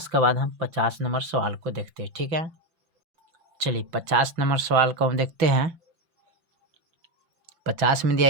के बाद हम 50 नंबर सवाल को देखते हैं। ठीक है, चलिए 50 नंबर सवाल को हम देखते हैं। 50 में दिया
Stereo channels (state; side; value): late; left; 5.8 ms